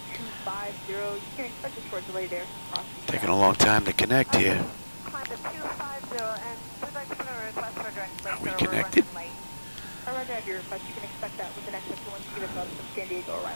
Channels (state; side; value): inverted; both; correlation -1.00